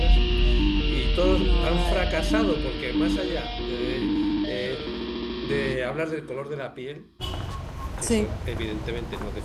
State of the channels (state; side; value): identical; both; correlation 1.00